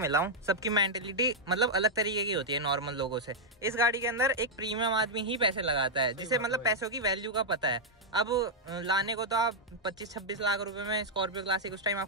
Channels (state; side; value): normal; both; correlation -0.03